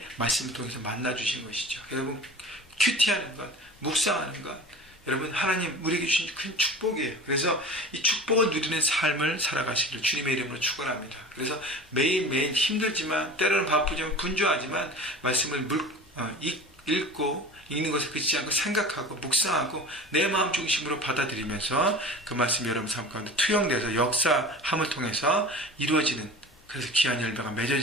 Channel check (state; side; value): normal; both; correlation 0.37